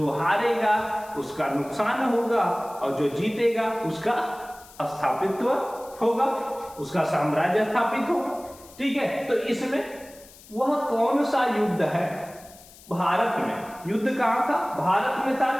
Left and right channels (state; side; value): noise; left; hiss, 22 dB below the sound